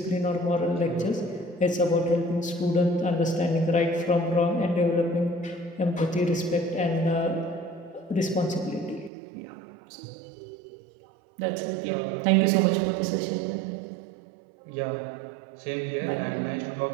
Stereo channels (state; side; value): drops out; left; at 9.1 s